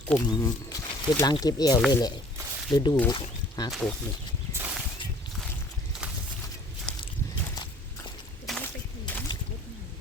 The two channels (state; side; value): normal; both; correlation 0.54